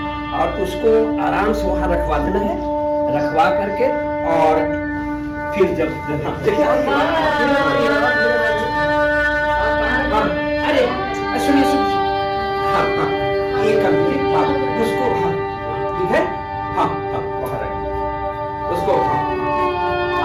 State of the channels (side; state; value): both; identical; correlation 1.00